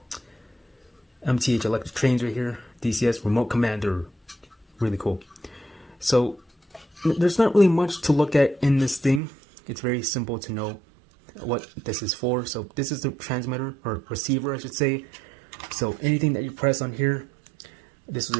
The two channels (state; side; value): drops out; left; at 9.2 s